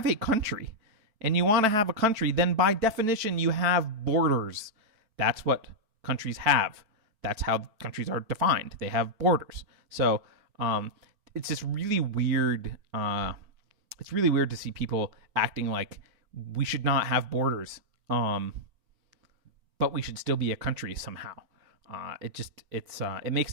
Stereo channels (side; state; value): left; late; 4.5 ms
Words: a country and you want to have a country, then by definition you have borders. That's what countries have. That's how countries are defined. They have borders. So it's just really weird. It's really weird to see people acting like we should not have borders, but we should still be a country somehow. It makes